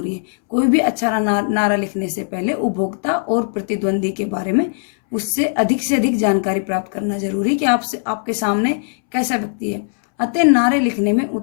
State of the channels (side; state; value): right; silent; 67 dB below the other